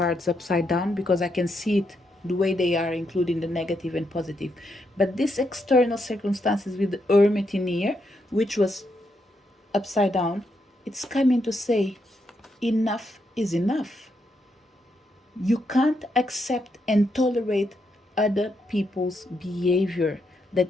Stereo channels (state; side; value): normal; both; correlation 0.80